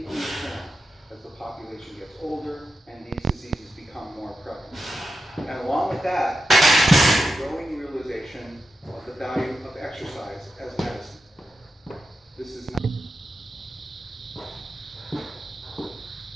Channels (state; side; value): normal; both; correlation 0.89